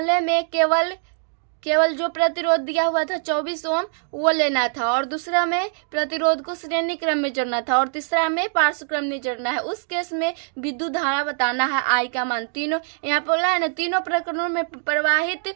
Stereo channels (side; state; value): left; silent; digital silence